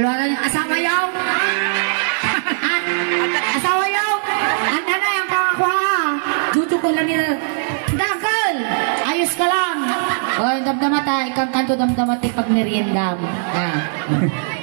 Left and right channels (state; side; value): silent; left; digital silence